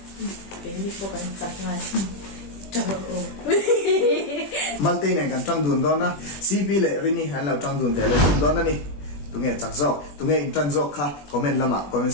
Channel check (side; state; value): right; late; 21 ms